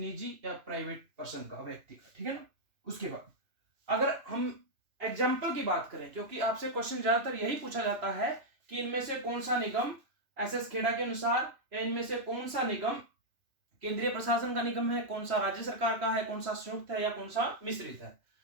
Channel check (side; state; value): left; late; 2.9 ms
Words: या प्राइवेट पर्सन का, व्यक्ति का, ठीक है ना। उसके बाद अगर हम एग्जाम्पल की बात करें, क्योंकि आपसे क्वेश्चन ज्यादातर यही पूछा जाता है कि इनमें से कौन सा निगम एसएस खेड़ा के अनुसार, या इनमें से कौन सा निगम केंद्रीय प्रशासन का निगम है, कौन सा राज्य सरकार का है, कौन सा संयुक्त है, या कौन सा मिश्रित है।